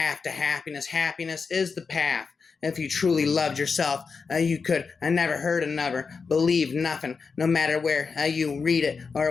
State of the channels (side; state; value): right; quieter; 5.1 dB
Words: to happiness. Happiness is the path. If you truly loved yourself, you could never hurt another, believe nothing, no matter where you read it